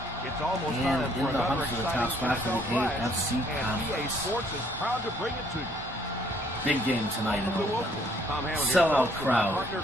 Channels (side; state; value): both; normal; correlation 0.64